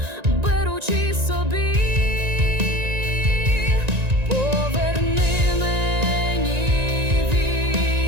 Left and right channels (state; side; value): late; left; 1.9 ms